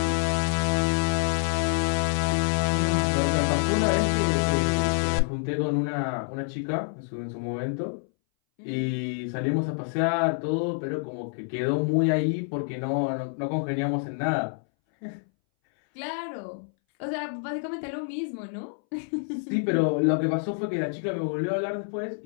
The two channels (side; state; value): right; silent; 60 dB below the other